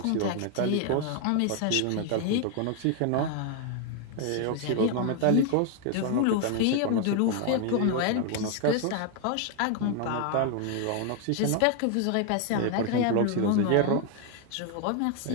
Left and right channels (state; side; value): different; both; correlation 0.00